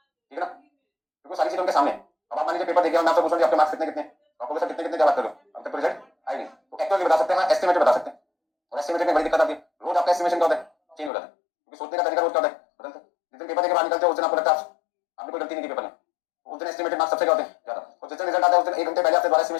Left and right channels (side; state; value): right; drops out; at 11.1 s